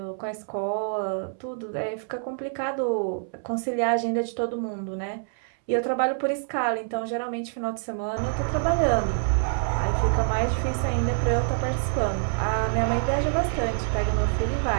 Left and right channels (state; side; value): silent; left; 61 dB below the other